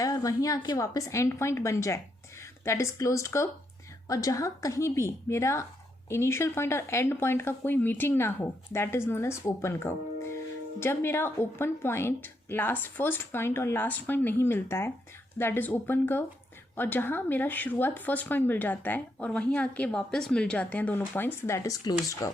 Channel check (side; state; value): both; normal; correlation 0.78